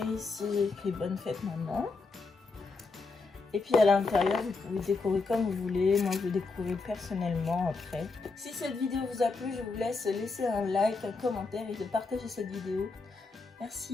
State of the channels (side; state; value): right; quieter; 4.0 dB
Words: ici, j'ai écrit bonne fête maman. Et puis à l'intérieur, vous pouvez décorer comme vous voulez. Moi, je vais décorer personnellement après. Si cette vidéo vous a plu, je vous laisse laisser un like, un commentaire et de partager cette vidéo.